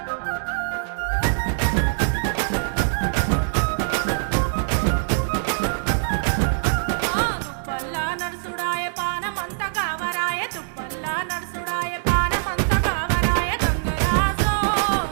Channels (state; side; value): silent; left; 63 dB below the other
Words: దుప్పల్లా నడుసుడాయ పానమంత కావరాయ దుప్పల్లా నడుసుడాయ పానమంత కావరాయ గంగరాజో